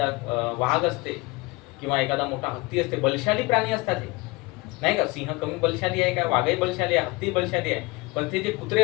वाघ असते किंवा एखादा मोठा हत्ती असते. बलशाली प्राणी असतात हे, नाही का? सिंह कमी बलशाली आहे का? वाघही बलशाली आहे, हत्ती बलशाली आहे. पण ते जे कुत्रे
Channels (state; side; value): quieter; right; 24.0 dB